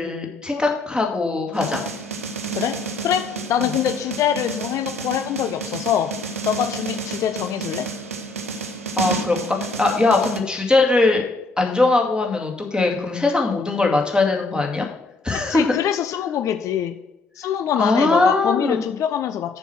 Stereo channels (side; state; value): right; quieter; 3.7 dB